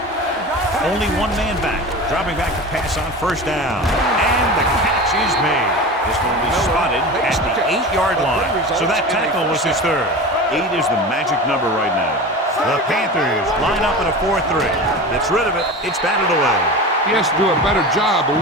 Only one man back. Dropping back to pass on first down. And the catch is made. This one will be spotted at the 8-yard line. So that tackle was his third. 8 is the magic number right now. The Panthers line up in a 4-3. Gets rid of it. It's batted away. He has to do a better job of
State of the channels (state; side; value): normal; both; correlation 0.31